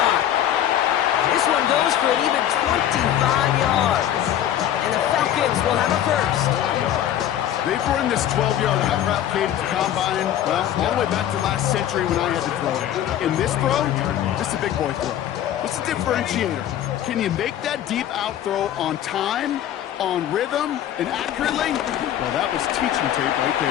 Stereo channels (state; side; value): quieter; right; 11.2 dB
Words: This one goes for an even 25 yards. And the Falcons will have a 1st. They've run this 12-yard out route, Kate, at the combine, well, all the way back to last century when I had to throw it. In this throw, this is a big boy throw. What's the differentiator? Can you make that deep out throw on time, on rhythm, and accurately? Well, that was teaching tape right